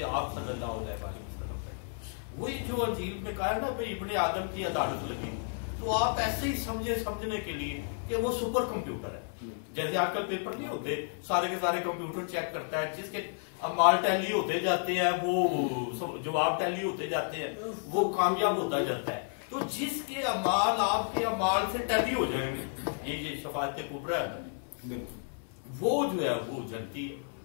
آپ صلی اللہ علیہ وسلم بیٹھے. وہی جو انجیل میں کہا ہے نا بھائی ابن آدم کی عدالت لگی، تو آپ ایسے ہی سمجھنے کے لیے کہ وہ سپر کمپیوٹر ہے. جیسے آج کل پیپر نہیں ہوتے سارے کے سارے کمپیوٹر چیک کرتا ہے، جس کے اعمال ٹیلی ہوتے جاتے ہیں وہ جواب ٹیلی ہوتے جاتے ہیں وہ کامیاب ہوتا جاتا ہے. تو جس کے اعمال آپ کے اعمال سے ٹیلی ہو جائیں گے، یہ شفاعت کبریٰ ہے، وہ جو ہے وہ جنتی ہے،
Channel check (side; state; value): right; silent; 57 dB below the other